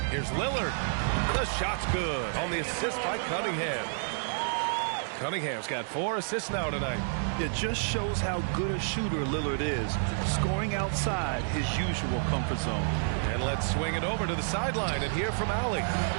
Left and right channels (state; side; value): silent; left; 58 dB below the other